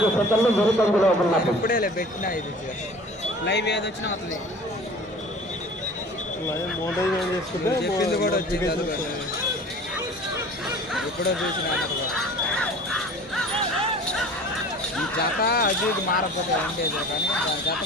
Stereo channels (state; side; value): normal; both; correlation 0.44